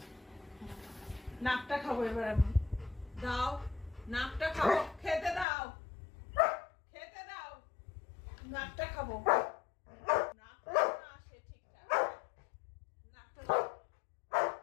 নাকটা খাবো এবার আমি। দাও নাকটা খাবো, খেতে দাও, খেতে দাও, নাকটা খাবো। নাকটা না আসে ঠিকঠাক, নাকটা দাও।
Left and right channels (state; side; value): drops out; right; at 5.5 s